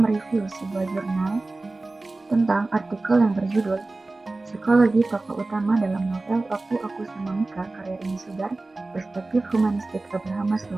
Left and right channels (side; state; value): left; quieter; 3.2 dB